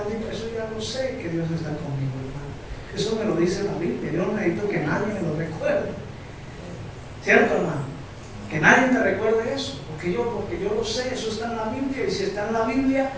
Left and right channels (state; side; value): identical; both; correlation 1.00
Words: Eso ya lo sé, que Dios está conmigo, hermano. Eso me lo dice la Biblia. Yo no necesito que nadie me lo recuerde. ¿Cierto, hermano? Que nadie me recuerde eso. Porque yo lo sé, eso está en la Biblia. Y si está en la Biblia,